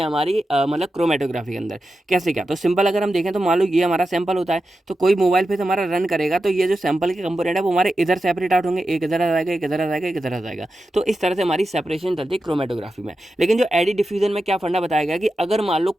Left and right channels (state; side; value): normal; both; correlation 0.91